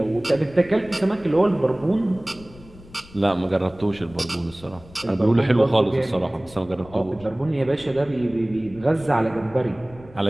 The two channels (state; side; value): noise; left; rumble, 21 dB below the sound